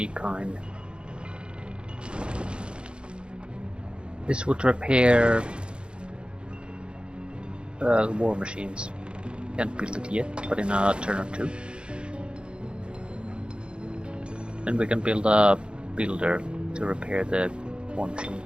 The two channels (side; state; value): left; late; 0.054 ms